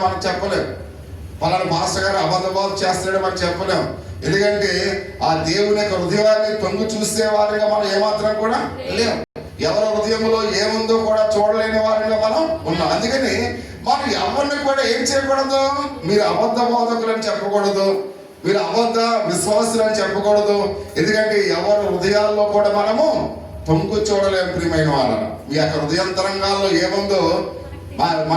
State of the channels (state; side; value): identical; both; correlation 1.00